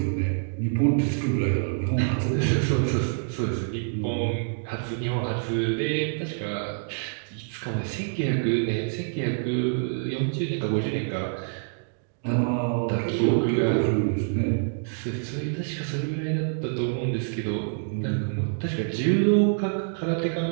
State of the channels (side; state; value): left; silent; digital silence